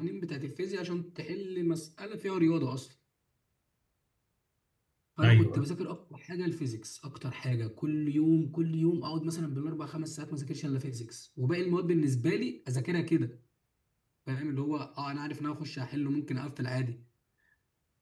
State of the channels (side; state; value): both; identical; correlation 1.00